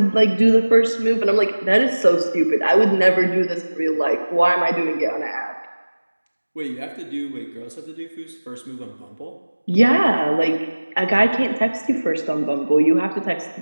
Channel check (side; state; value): both; inverted; correlation -1.00